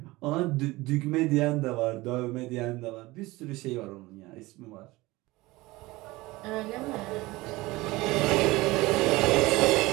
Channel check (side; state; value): left; quieter; 20.5 dB